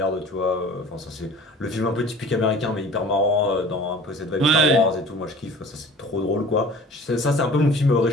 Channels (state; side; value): normal; both; correlation 0.44